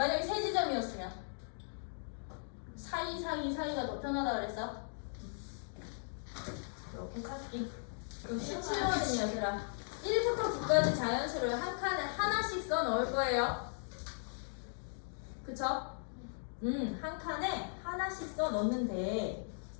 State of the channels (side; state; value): right; silent; digital silence